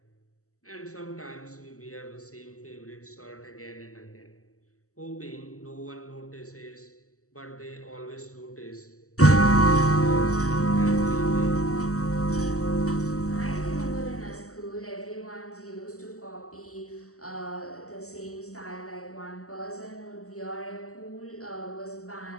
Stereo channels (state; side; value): late; right; 0.65 ms